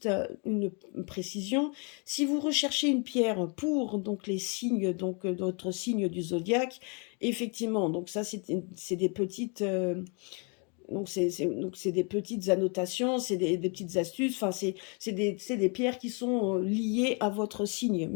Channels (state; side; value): quieter; right; 35.1 dB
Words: à une précision, si vous recherchez une pierre pour les signes, d'autres signes du zodiaque, effectivement, donc ça c'est des petites c'est des petites annotations, c'est des petites astuces, enfin c'est des pierres qui sont liées à votre signe.